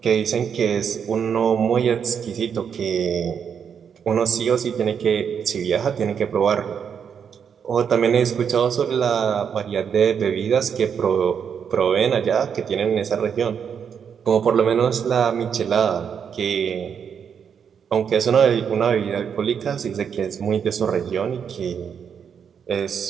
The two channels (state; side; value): quieter; left; 7.4 dB